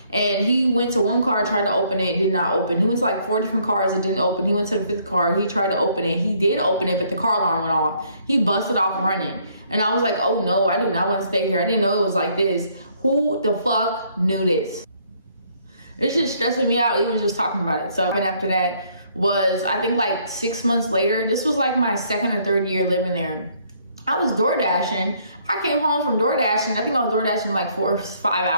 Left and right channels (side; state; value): both; inverted; correlation -0.66